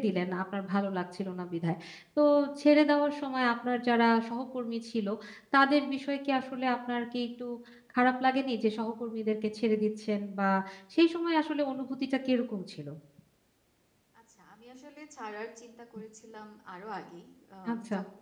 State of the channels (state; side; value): identical; both; correlation 1.00